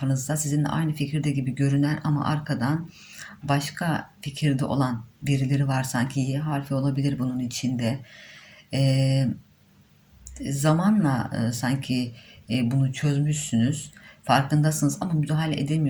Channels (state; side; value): identical; both; correlation 1.00